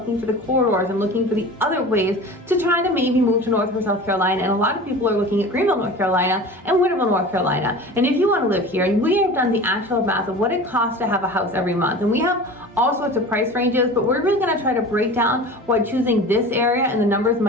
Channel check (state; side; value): normal; both; correlation 0.36